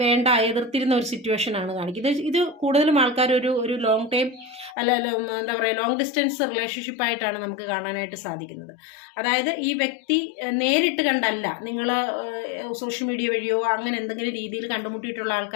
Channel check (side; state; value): right; drops out; at 4.8 s